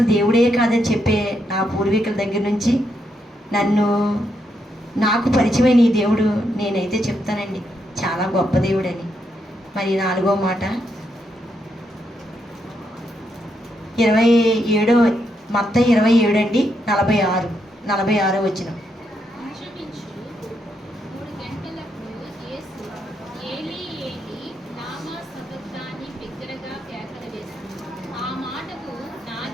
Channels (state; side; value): normal; both; correlation 0.79